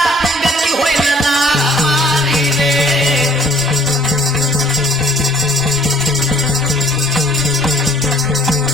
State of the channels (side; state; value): both; normal; correlation 0.56